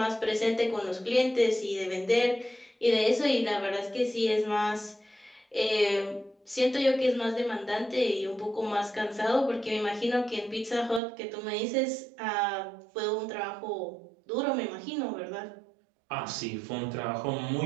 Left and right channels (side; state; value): left; drops out; at 11.0 s